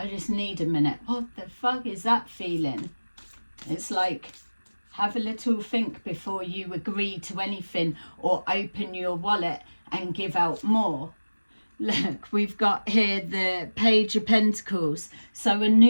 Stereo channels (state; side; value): inverted; both; correlation -1.00